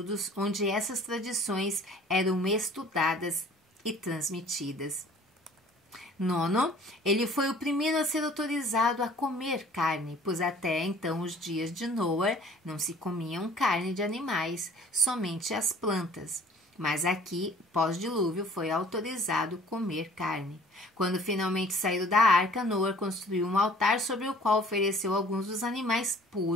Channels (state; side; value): normal; both; correlation 0.52